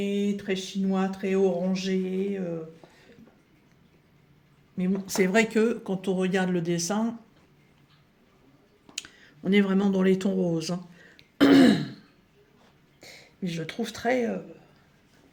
très chinois, très orangé. Mais bon, c'est vrai que quand on regarde le dessin, on est vraiment dans les tons roses, hein. Mais je le trouve très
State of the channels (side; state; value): both; identical; correlation 1.00